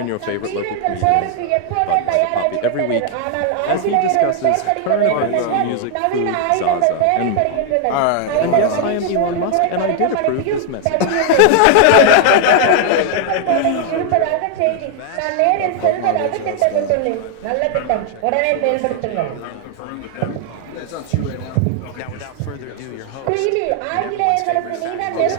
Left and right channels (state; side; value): different; both; correlation 0.00